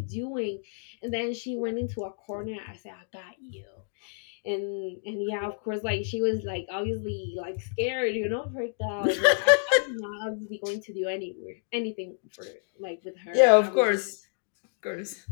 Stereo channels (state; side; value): silent; right; digital silence